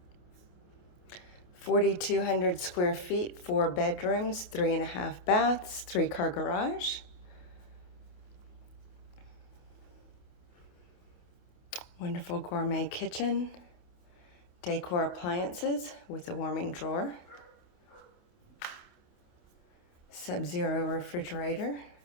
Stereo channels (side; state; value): right; late; 28 ms